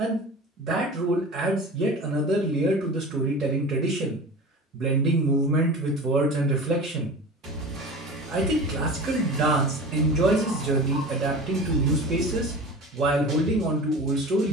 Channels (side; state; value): both; normal; correlation 0.35